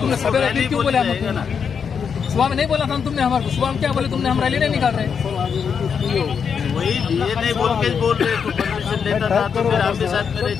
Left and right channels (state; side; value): quieter; right; 6.7 dB